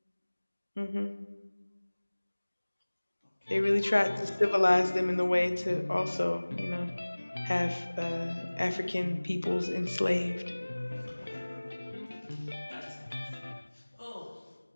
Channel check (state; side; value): inverted; both; correlation -1.00